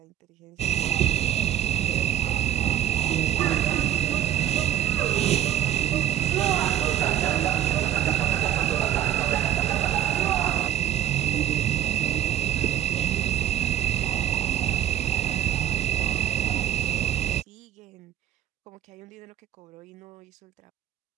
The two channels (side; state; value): left; quieter; 11.5 dB